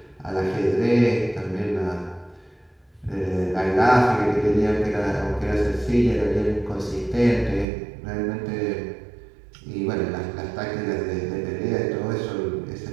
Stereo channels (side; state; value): left; drops out; at 7.7 s